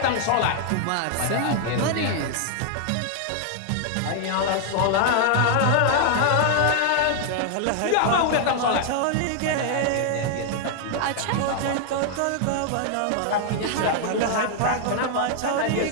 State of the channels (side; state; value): both; different; correlation 0.00